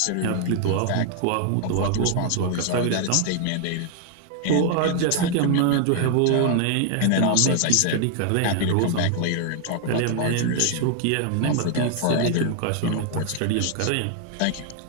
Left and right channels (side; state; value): both; different; correlation 0.00